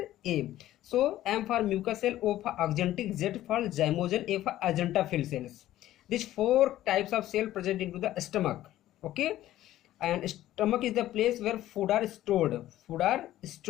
So M for mucous cell, O for axanthic, Z for zymogen, A for agentophil cells. These 4 types of cell present into the stomach. Okay, and stomach is the place where food are stored.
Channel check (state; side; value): quieter; right; 14.0 dB